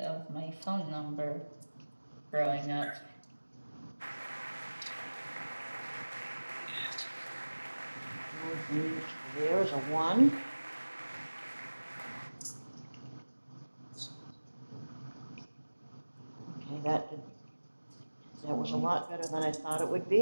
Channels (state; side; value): inverted; both; correlation -1.00